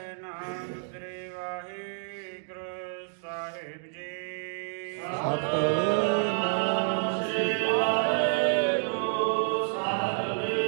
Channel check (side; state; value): left; silent; digital silence